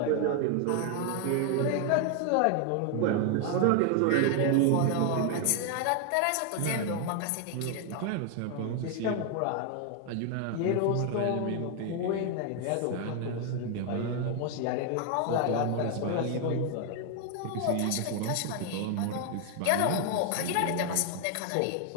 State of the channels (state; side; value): different; both; correlation 0.00